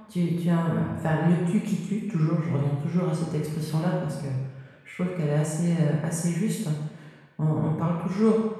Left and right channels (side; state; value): both; identical; correlation 1.00